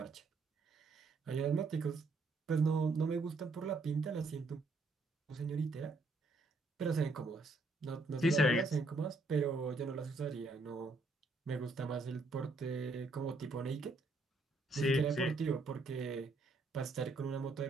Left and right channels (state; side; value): quieter; left; 3.3 dB